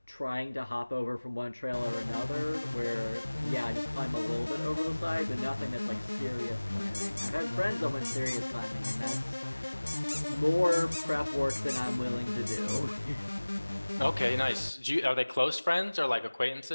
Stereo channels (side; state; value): both; inverted; correlation -1.00